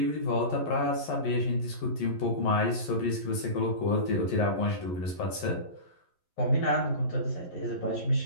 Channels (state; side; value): late; right; 11 ms